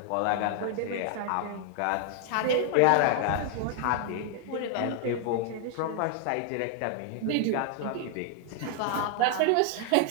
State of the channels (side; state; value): both; different; correlation 0.00